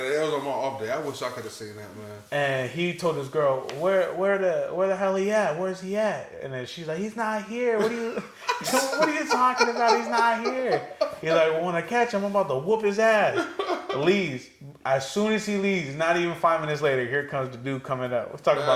was on my off day. I wish I could have seen that, man. and he told his girl, where the hell he at? Where's he at? And then she's like, he's not here. What are you talking about? He's not here. He's like, well, when I catch him, I'm about to whoop his ass. Leaves. As soon as he leaves, not even 5 minutes later, here comes the dude coming up. Let's talk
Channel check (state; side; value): identical; both; correlation 1.00